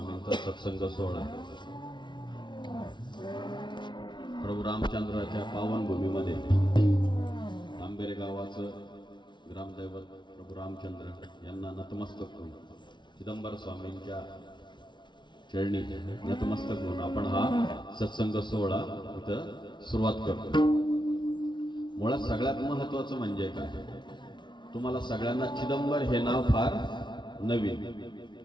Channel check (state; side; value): late; right; 0.23 ms